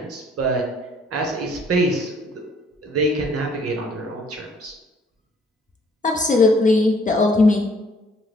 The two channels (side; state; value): both; normal; correlation 0.61